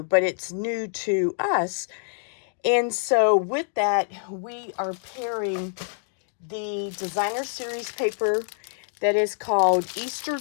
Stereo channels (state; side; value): silent; right; 61 dB below the other